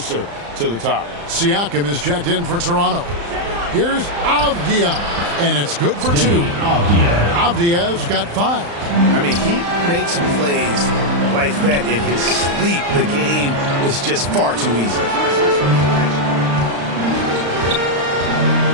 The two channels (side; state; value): left; late; 35 ms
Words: to the top. Siakam is checked in for Toronto. Here's Avdia, and it's good for two. Avdia's got 5. I mean, he makes plays like that in his sleep. The game is just far too easy.